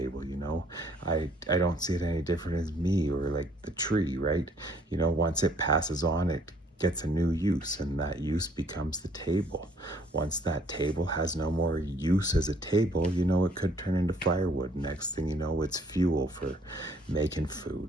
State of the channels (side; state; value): both; normal; correlation 0.61